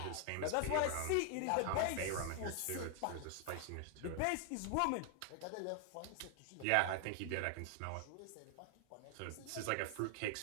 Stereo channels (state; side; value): different; both; correlation 0.00